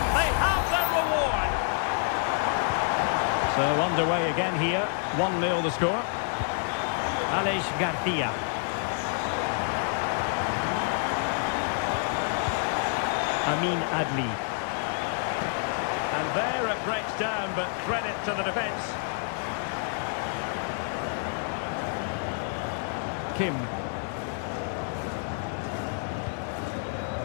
They have their reward. So underway again here. 1-0 the score. Alex Garcia. Amin Adli. And there it breaks down, but credit to the defence. Kim.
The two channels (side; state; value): right; silent; 59 dB below the other